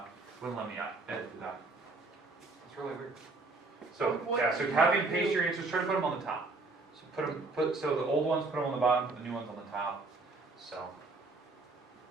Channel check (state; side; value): quieter; left; 3.5 dB